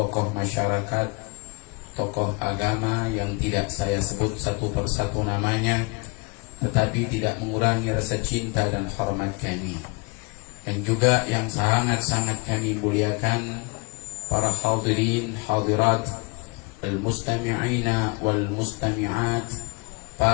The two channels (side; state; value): right; quieter; 27.8 dB